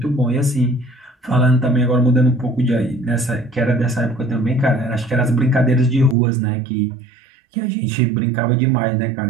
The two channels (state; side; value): drops out; left; at 6.2 s